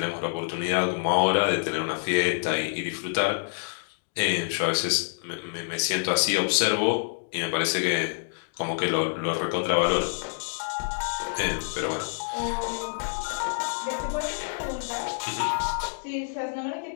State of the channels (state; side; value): silent; right; digital silence